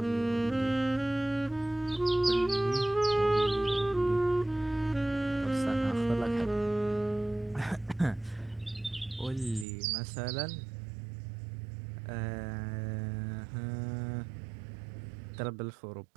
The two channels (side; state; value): left; drops out; at 9.7 s